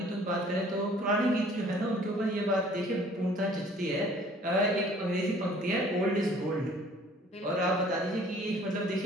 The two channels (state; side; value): normal; both; correlation 0.54